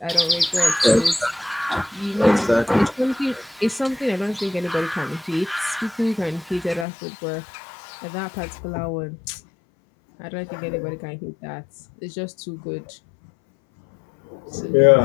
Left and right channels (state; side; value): drops out; right; at 6.9 s